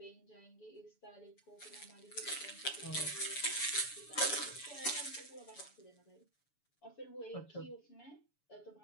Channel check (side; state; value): right; late; 7.0 ms